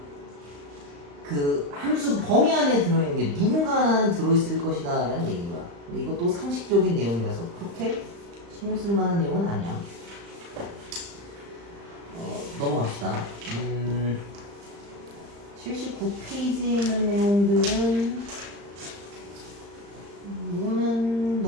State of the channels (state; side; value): late; left; 35 ms